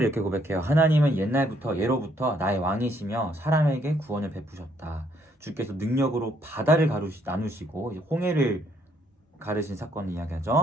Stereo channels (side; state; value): both; normal; correlation 0.69